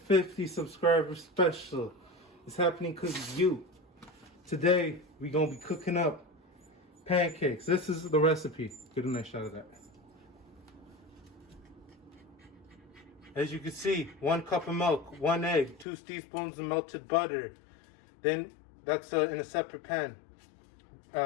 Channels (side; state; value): right; drops out; at 15.9 s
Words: subscriber special. It's happening because of you. Today, we're going to be cooking up pancakes. This is the recipe. Get a nice shot of that. As you can see, 1 cup of milk, 1 egg, 2 teaspoons of melted butter. Then that's in a separate pan,